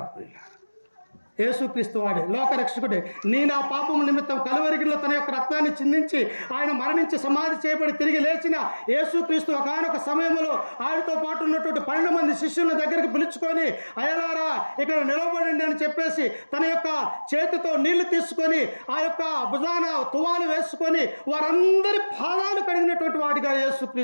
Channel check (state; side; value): inverted; both; correlation -1.00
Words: యేసుక్రీస్తు వాడే లోకరక్షకుడే. నీ నా పాపము నిమిత్తం కలువరిగిలో తన యొక్క రక్తాన్ని చిందించి ఆయన మరణించి సమాధి చేయబడి తిరిగి లేచిన యేసుక్రీస్తు ఒకనొక సమయంలో ఆయనతో పాటు ఉన్నటువంటి 12 మంది శిష్యుల దగ్గరికి పిలుచుకొని, అయ్యలారా ఇక్కడ నిలబడండి అని చెప్పేసి తన యొక్క చేతితో నీళ్లు తీసుకొని ఆ యొక్క భుజాన తువాలు వేసుకొని వారందరి పాదాలు కడిగినటువంటి వాడిగా